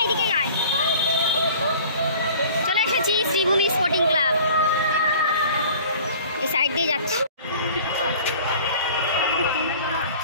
শ্রীভূমি স্পোর্টিং ক্লাব, এই সাইড দিয়ে যাচ্ছি।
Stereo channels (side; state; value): both; inverted; correlation -0.46